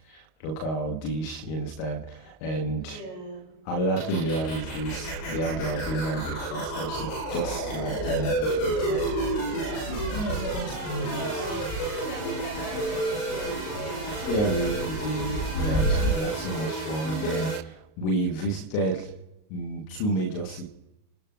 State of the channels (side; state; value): right; late; 38 ms